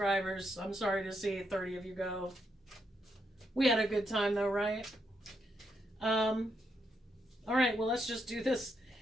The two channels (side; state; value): both; normal; correlation 0.79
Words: I'm sorry to see 30 of you go. We had a good time though, right? All right, well, let's just do this.